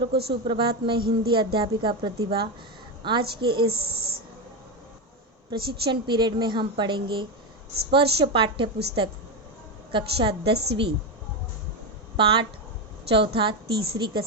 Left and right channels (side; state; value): both; normal; correlation 0.12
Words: को सुप्रभात। मैं हिंदी अध्यापिका प्रतिभा। आज के इस प्रशिक्षण पीरियड में हम पढ़ेंगे स्पर्श पाठ्य पुस्तक कक्षा 10वीं पाठ चौथा तीसरी